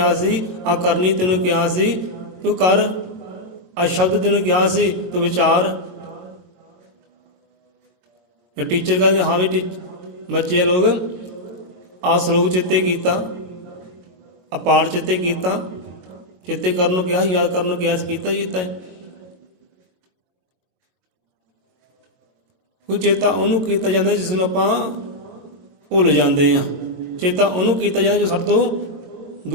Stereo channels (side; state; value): left; late; 22 ms